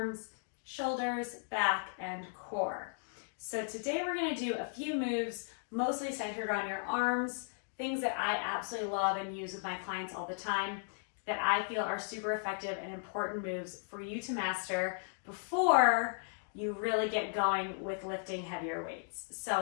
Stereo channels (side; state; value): right; silent; digital silence